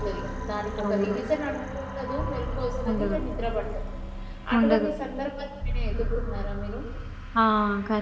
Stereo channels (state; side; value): identical; both; correlation 1.00